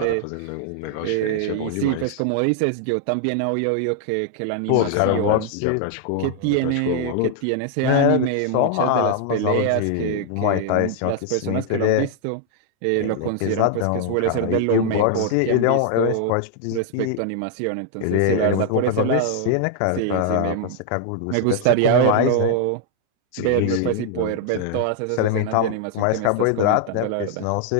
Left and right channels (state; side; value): different; both; correlation 0.00